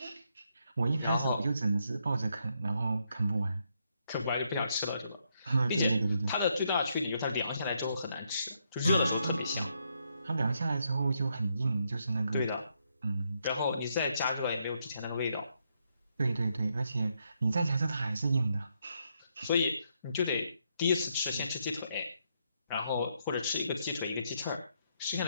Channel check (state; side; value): inverted; both; correlation -0.77